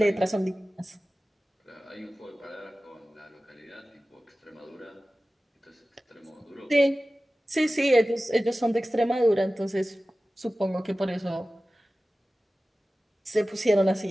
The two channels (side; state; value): both; normal; correlation 0.96